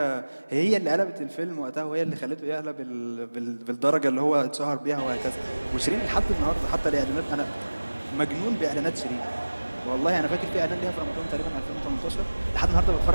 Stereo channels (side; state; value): both; inverted; correlation -1.00